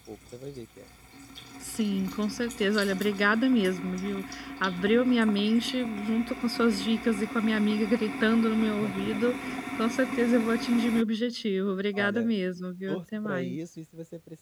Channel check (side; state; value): both; identical; correlation 1.00